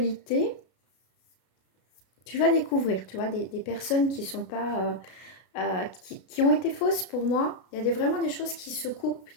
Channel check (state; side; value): late; right; 32 ms